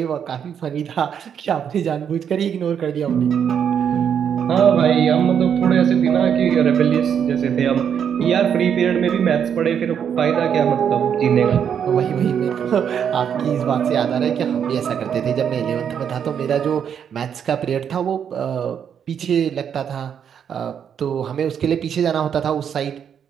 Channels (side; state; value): left; quieter; 8.1 dB